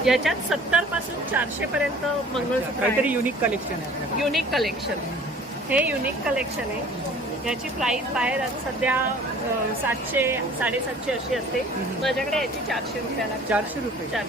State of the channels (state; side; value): normal; both; correlation 0.49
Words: याच्यात 70 पासून 400 पर्यंत मंगळसूत्र काहीतरी आहे. युनिक कलेक्शन आहे. Unique collection. हे युनिक कलेक्शन आहे. याची प्राइस बाहेर सध्या 700 750 अशी असते. माझ्याकडे याची 400 रुपयाला. 400 रुपये.